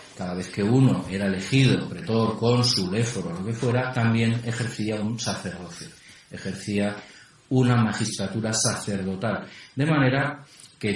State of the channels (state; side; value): identical; both; correlation 1.00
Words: cada vez que uno era elegido, pretor, cónsul, éforo, lo que fuera, también ejercía un sacerdocio. Ejercía una magistratura sacerdotal. De manera que